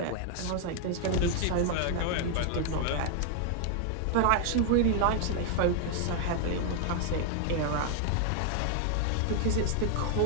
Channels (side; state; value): both; different; correlation 0.00